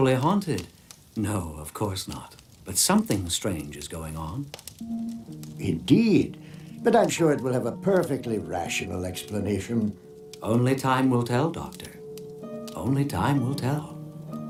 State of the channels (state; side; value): identical; both; correlation 1.00